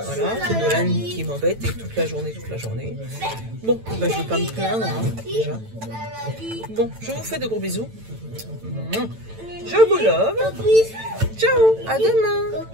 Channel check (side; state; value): left; late; 9.0 ms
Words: Nolan qui m'embête et toute la journée. Bon, bah, je ne vais pas me plaindre, hein, déjà. Bon, je vous fais de gros bisous. Je vous love. Ciao, à demain.